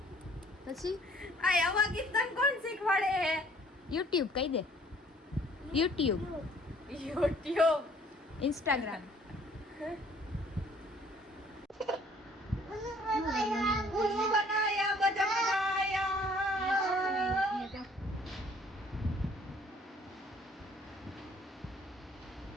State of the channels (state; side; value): normal; both; correlation 0.57